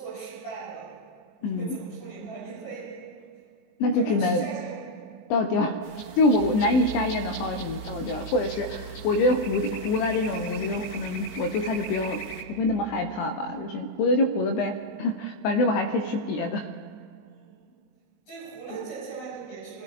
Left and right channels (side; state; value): right; late; 20 ms